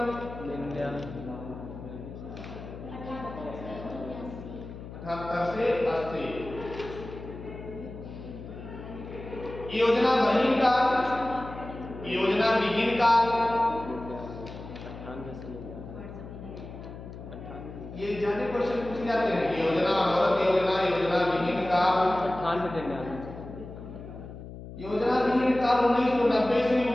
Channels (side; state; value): left; noise; hum, 12 dB below the sound